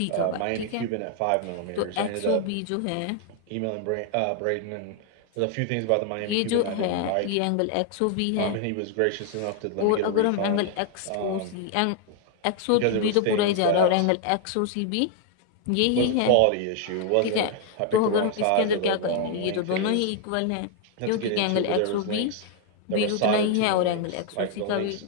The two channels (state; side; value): different; both; correlation 0.00